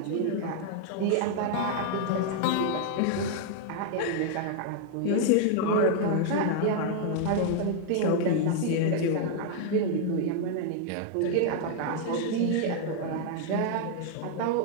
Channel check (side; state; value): both; different; correlation 0.00